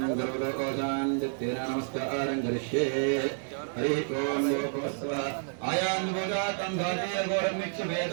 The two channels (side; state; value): left; silent; digital silence